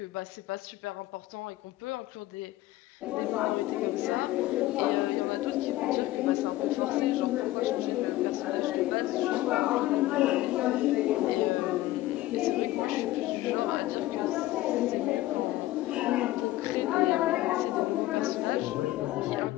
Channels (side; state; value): right; quieter; 16.2 dB